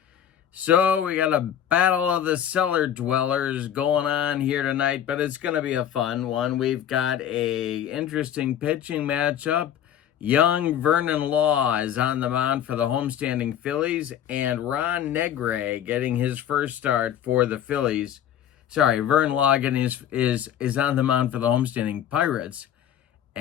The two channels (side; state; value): right; quieter; 10.0 dB